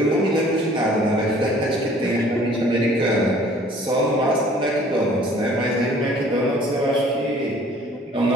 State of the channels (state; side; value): normal; both; correlation 0.54